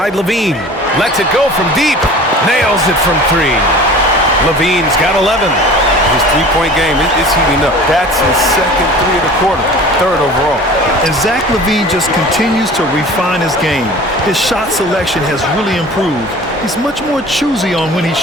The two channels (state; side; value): normal; both; correlation 0.42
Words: Levine. Lets it go from deep. Nails it from 3. Levine's got 11. His three-point game is heating up. That's his second 3 of the quarter, 3rd overall. And Zach LaVine just continues to refine his game. His shot selection has really improved. He's much more choosy on when he